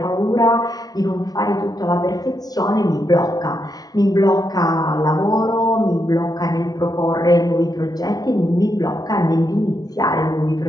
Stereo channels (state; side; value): late; right; 0.19 ms